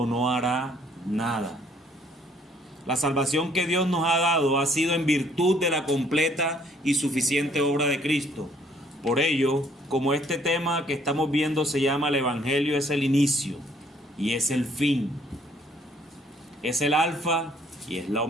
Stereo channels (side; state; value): both; normal; correlation 0.63